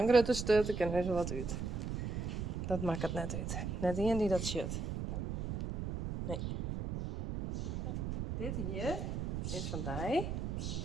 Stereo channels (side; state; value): right; noise; rumble, 3 dB below the sound